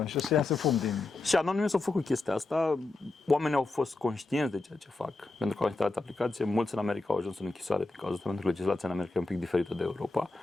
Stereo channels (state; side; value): quieter; right; 3.2 dB